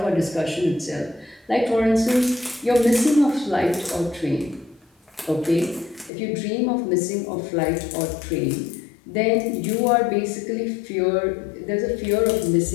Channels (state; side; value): drops out; right; at 6.1 s